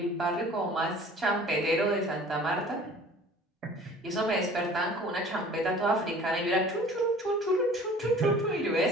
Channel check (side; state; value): both; normal; correlation 0.47